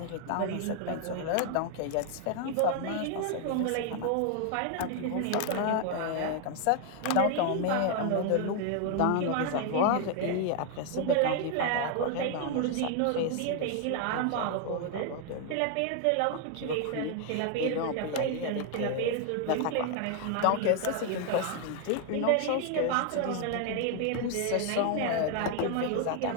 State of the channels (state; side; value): different; both; correlation 0.00